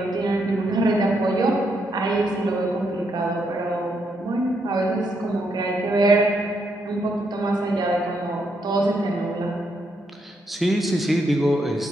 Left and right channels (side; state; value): both; normal; correlation 0.78